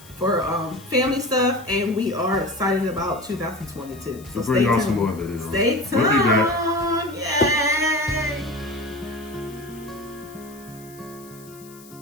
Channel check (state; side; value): noise; left; hiss, 22 dB below the sound